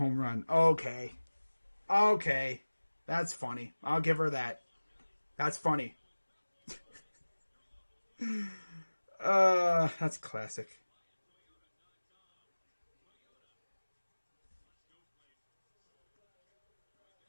run. Okay. That's funny. I'll give her that. That's funny. That's classic.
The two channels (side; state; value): both; inverted; correlation -1.00